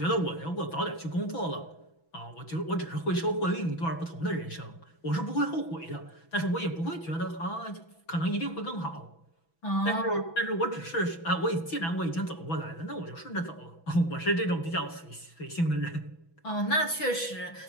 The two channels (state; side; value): late; right; 6.1 ms